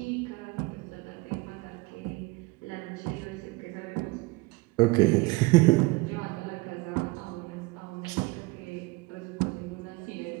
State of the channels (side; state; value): left; quieter; 24.0 dB